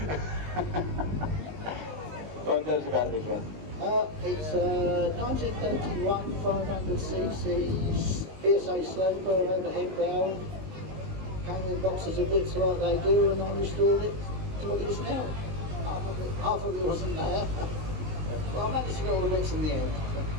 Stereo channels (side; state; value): left; late; 19 ms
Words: Go on, tell us about this one. It's a 1931 500cc PSA sled for an overhead valve. Came in boxes of bits like they do, and I restored it to what it is now. Half of it wasn't there. But I managed to get all the bits in the end.